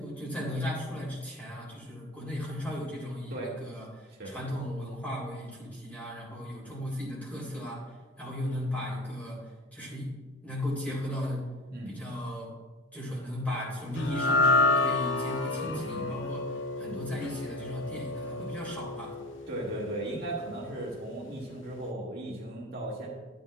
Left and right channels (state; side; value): normal; both; correlation 0.30